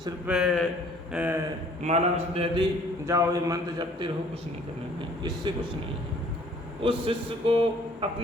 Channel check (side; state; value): both; normal; correlation 0.56